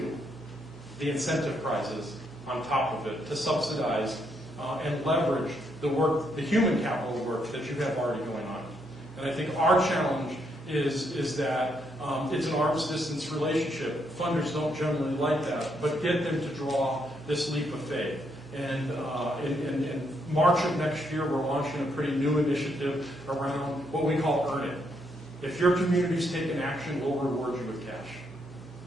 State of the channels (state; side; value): normal; both; correlation 0.76